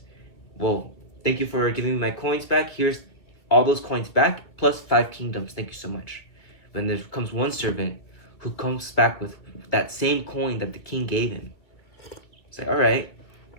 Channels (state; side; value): late; right; 2.2 ms